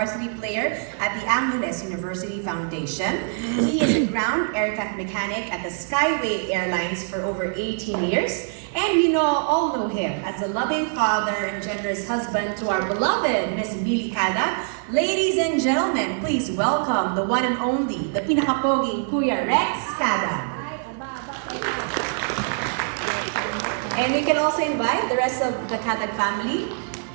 player at the Angeles University Foundation. He is a ground aircraft mechanic at the Skyway Airlines for over 18 years. And we all know him as a loving father and generous husband to our beloved Miss Billy Cada. Ladies and gentlemen, please welcome the one and only, the pinakapoging Kuya Rex Cada. And we can also invite the rest of the Cadag family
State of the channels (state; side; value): silent; left; 63 dB below the other